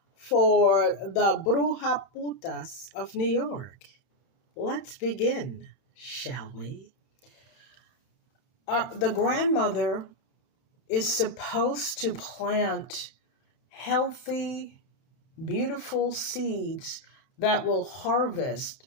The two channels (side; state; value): right; late; 31 ms